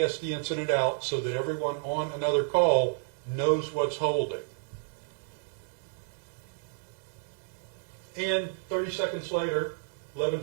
the incident out so that everyone on another call knows what's holding. And 30 seconds later,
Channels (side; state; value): left; silent; 57 dB below the other